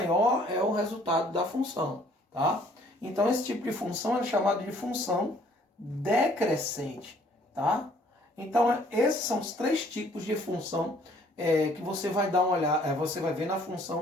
é o resultado da função, tá? Então esse tipo de função é chamado de função decrescente, tá? Então esses são os três tipos de função que você vai dar uma olhada, você vai ver na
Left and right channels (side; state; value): both; normal; correlation 0.60